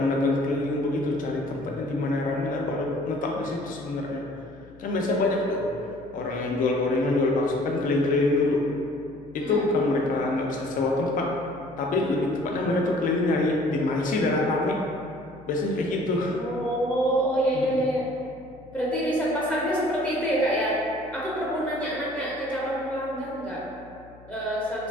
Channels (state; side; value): noise; left; hum, 23 dB below the sound